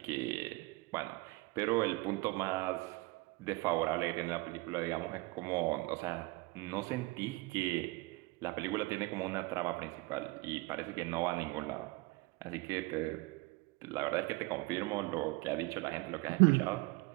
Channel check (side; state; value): left; quieter; 23.5 dB